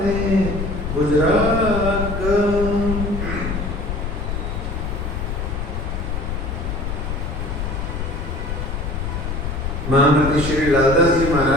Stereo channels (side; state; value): left; noise; rumble, 3 dB below the sound